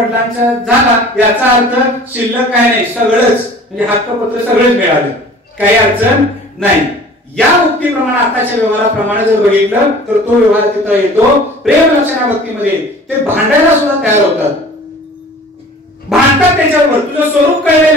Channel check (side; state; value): both; normal; correlation 0.46